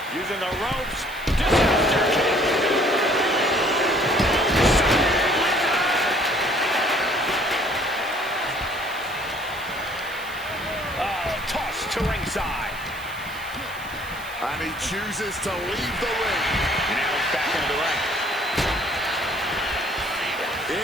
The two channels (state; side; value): noise; right; hiss, 18 dB below the sound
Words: Using the ropes. Disaster kick. To ringside. And he chooses to leave the ring. Now he's back into the ring.